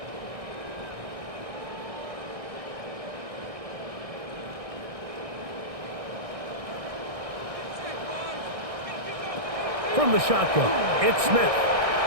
From the shotgun, it's Smith.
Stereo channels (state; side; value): late; left; 1.6 ms